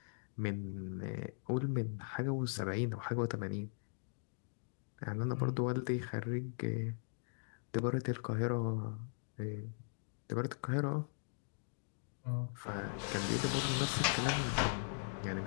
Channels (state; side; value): silent; right; digital silence